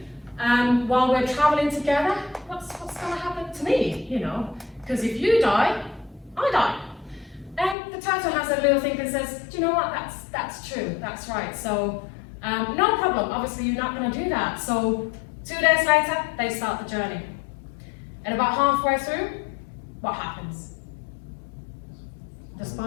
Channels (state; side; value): drops out; right; at 7.8 s